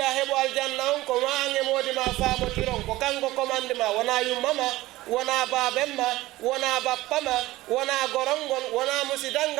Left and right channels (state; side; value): quieter; left; 17.8 dB